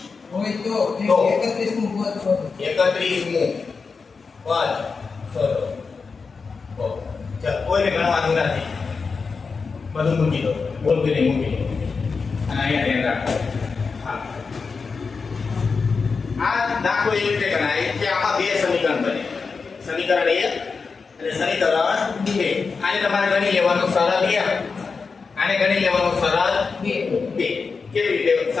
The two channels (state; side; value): quieter; right; 4.9 dB